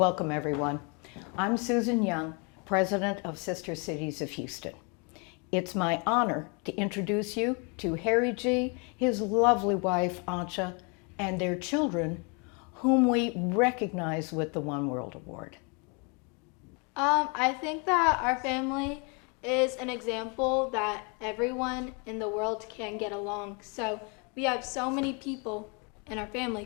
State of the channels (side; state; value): right; quieter; 34.0 dB